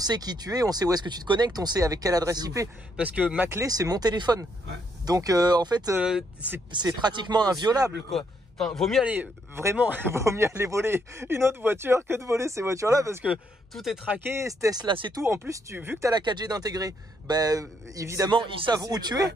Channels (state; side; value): normal; both; correlation 0.74